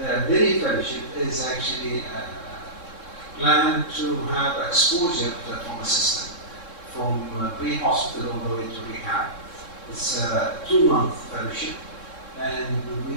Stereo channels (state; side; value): late; right; 3.7 ms